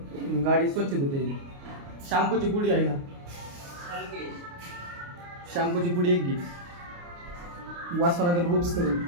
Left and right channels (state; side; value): late; left; 29 ms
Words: गाडी स्वच्छ धुता येते. शॅम्पूची पुडी आहे ना, शॅम्पूची पुडी एक घे. वासवानगर ग्रुप्स करून